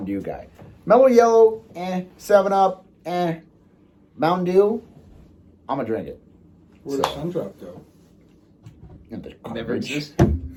Dew guy. Mellow Yellow, 7-Up, Mountain Dew, I'm going to drink it. Where does Sundrop go? Never existed.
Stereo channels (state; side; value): identical; both; correlation 1.00